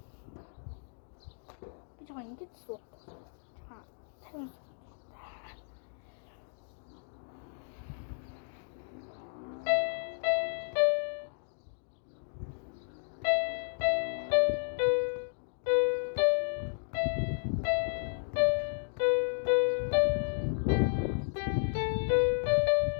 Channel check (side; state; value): right; silent; digital silence